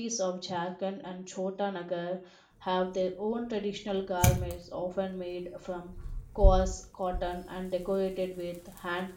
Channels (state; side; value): identical; both; correlation 1.00